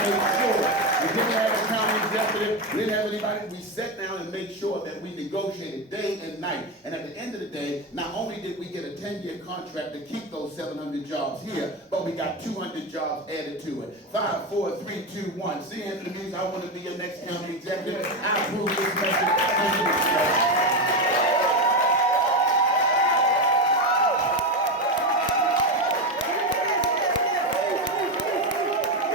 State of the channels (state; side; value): normal; both; correlation 0.13